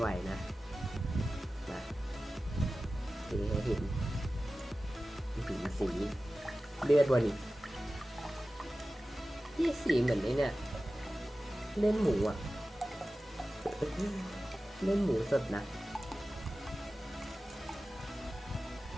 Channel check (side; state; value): both; normal; correlation 0.95